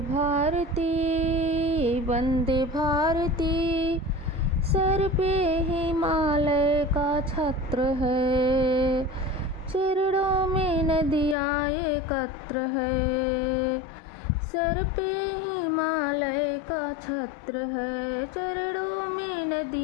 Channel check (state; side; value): drops out; right; at 11.4 s